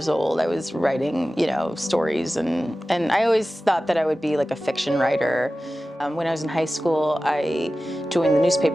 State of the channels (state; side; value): normal; both; correlation 0.96